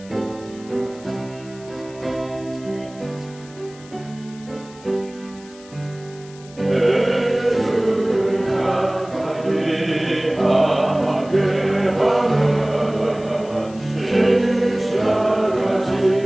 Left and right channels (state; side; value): noise; left; hiss, 23 dB below the sound